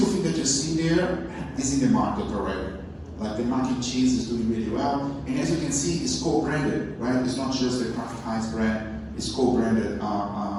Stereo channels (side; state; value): both; identical; correlation 1.00